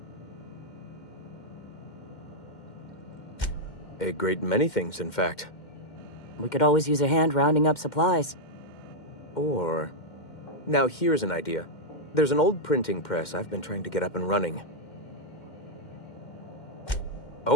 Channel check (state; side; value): late; right; 2.1 ms